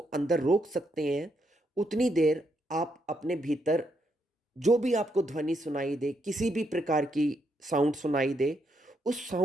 अंदर रोक सकते हैं, उतनी देर आप अपने भीतर जो भी आपको ध्वनि सुनाई दे, किसी भी प्रकार की साउंड सुनाई दे, उस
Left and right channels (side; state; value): both; normal; correlation 0.78